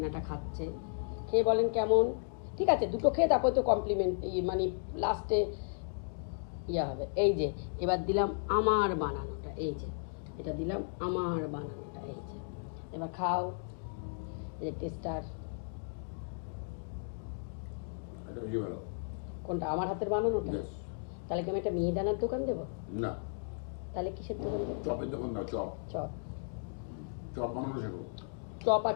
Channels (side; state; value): right; silent; digital silence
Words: খাচ্ছে, খেয়ে বলেন কেমন। ঠিক আছে, দুটো খেয়ে তারপরে তো কমপ্লিমেন্ট মানে লাস্টে ইয়ে হবে। এই যে এবার দিলাম আমার বানানোটা, এই যে এটা দিলাম আমার বানানোটা, এই যে এবার খাও। এই যে টেস্টার কোনটা? আমার হাতের বানানোটা। তাহলে কি আমি একটা মিহিদানার দোকান দেবো? না, তাহলে কিসের দোকান দেবো? চপের দোকান দাও। Chop chop. চপ বানানো শেখো। চপ আর